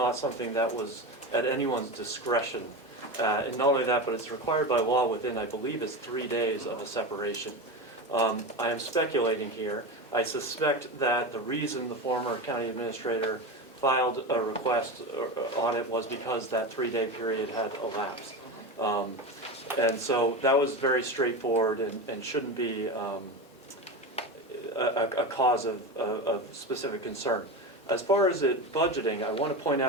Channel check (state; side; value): normal; both; correlation 0.22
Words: something that was at anyone's discretion. And not only that, but it's required by law within, I believe, it's 3 days of a separation. I am speculating here. I suspect that the reason the former county administrator filed a request on it was because that 3-day period had elapsed. And so that was very straightforward and shouldn't be a cause of specific concern. As far as it budgeting, I want to point